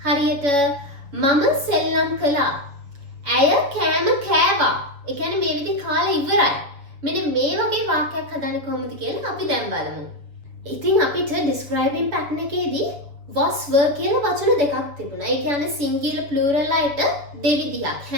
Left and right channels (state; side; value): late; left; 6.9 ms